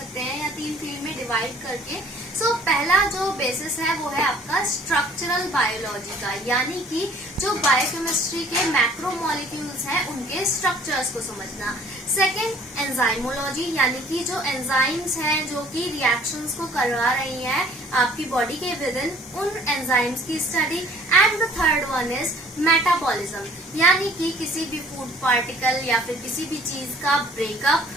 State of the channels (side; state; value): both; normal; correlation 0.54